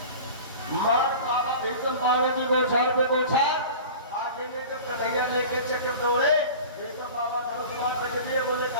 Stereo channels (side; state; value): both; inverted; correlation -0.38